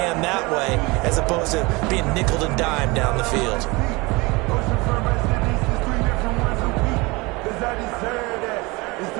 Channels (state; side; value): quieter; left; 24.7 dB